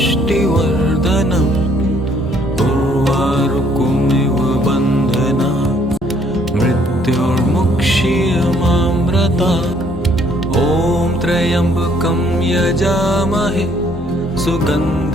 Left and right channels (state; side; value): normal; both; correlation 0.64